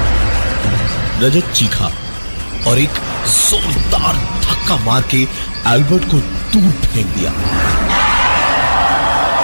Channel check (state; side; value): inverted; both; correlation -1.00